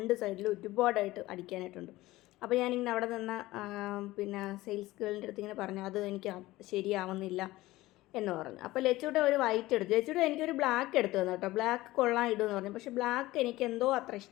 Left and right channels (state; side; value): quieter; right; 17.9 dB